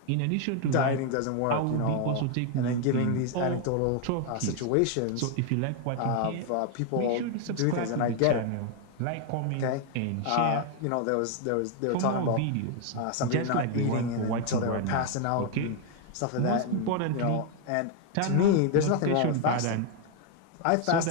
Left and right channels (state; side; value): different; both; correlation 0.01